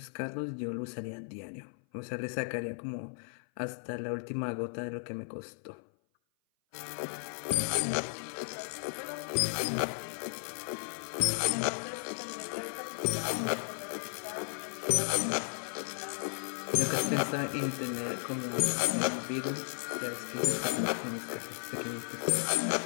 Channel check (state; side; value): silent; right; 55 dB below the other